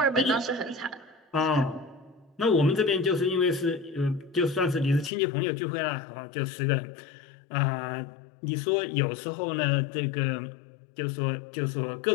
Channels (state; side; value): drops out; right; at 5.1 s